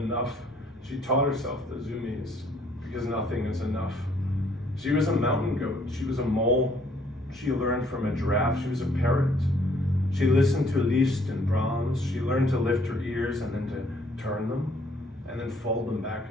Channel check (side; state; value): both; normal; correlation 0.64